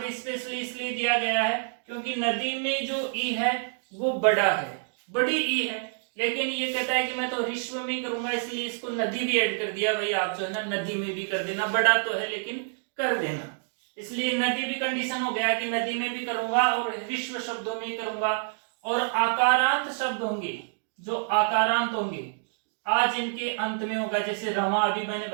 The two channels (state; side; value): silent; left; digital silence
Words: स्पेशली इसलिए दिया गया है क्योंकि नदी में जो ई है वो बड़ा है, बड़ी ई है, लेकिन ये कहता है कि मैं तो हरिश्व में करूंगा, इसलिए इसको नदी भी ऐड कर दिया। भाई आप जो है ना नदी में भी कर देना, बड़ा तो है लेकिन कर देना, इसलिए नदी भी कंडीशन हो गया कि नदी में भी करूंगा और हरिश्व शब्दों में करूंगा। और आकारांत शब्द होंगे, जो आकारांत होंगे आज इनके अंत में होगा, जैसे रमा अभी मैंने